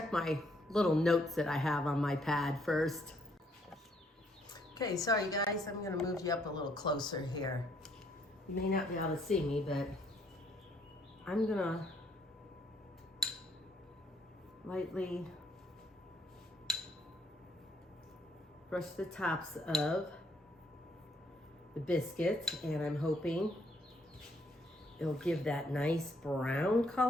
my little notes that I have on my pad first. Okay, sorry guys, I'm gonna move you up a little closer here. You may not be able to see me, but I'm gonna lightly brush the tops of the biscuits, and I'm hoping it'll give that nice brown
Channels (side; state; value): both; normal; correlation 0.69